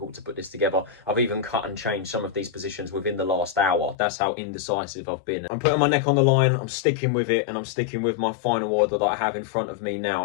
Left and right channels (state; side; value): drops out; right; at 4.0 s